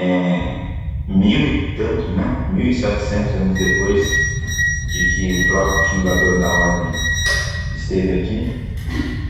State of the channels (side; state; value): both; identical; correlation 1.00